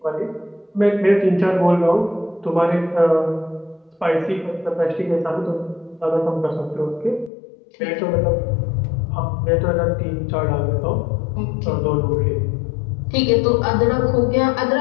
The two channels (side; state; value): right; drops out; at 7.3 s